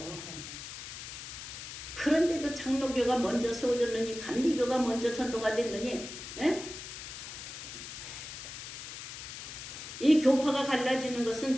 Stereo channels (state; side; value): noise; left; hiss, 10 dB below the sound